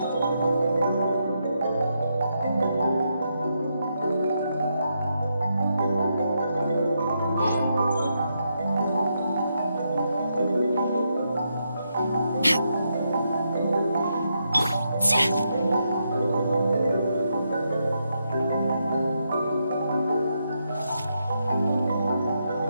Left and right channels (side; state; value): both; inverted; correlation -0.81